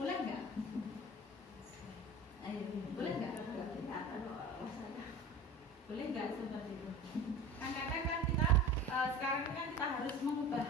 nggak? Ayo, boleh nggak? Boleh nggak seperti itu? Kadang-kadang kan kita sekarang kan kita harus mengubah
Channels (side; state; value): both; normal; correlation 0.35